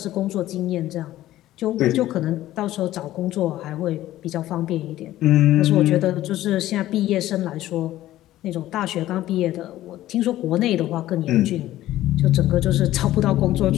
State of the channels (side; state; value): right; quieter; 14.6 dB